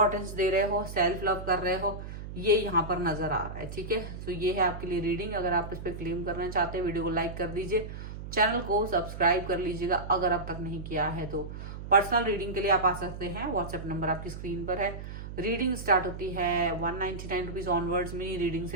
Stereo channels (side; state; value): right; noise; hum, 9 dB below the sound